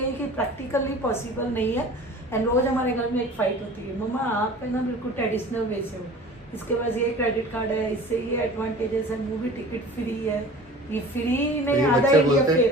कि प्रैक्टिकली पॉसिबल नहीं है। एंड रोज हमारे घर में एक फाइट होती है, मम्मा आप है ना बिल्कुल ट्रेडिशनल वे से हो, इसके पास ये क्रेडिट कार्ड है, इससे ये एडवांटेजेस है, मूवी टिकट फ्री है, ये फ्री नहीं आधा इंडिया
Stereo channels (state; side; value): normal; both; correlation 0.41